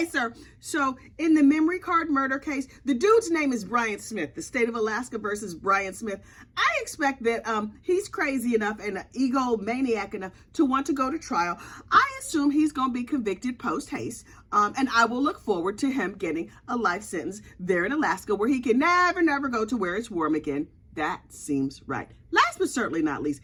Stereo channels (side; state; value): both; identical; correlation 1.00